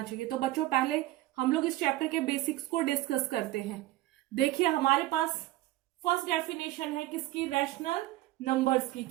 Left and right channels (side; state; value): left; quieter; 16.7 dB